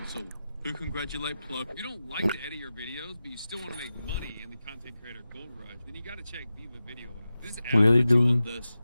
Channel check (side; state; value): both; inverted; correlation -0.93